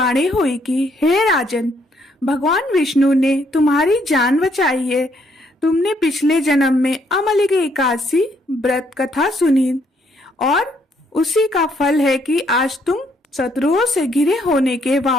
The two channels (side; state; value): both; normal; correlation 0.70